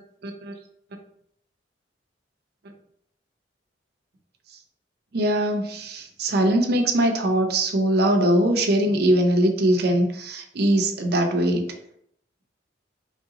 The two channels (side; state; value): both; normal; correlation 0.55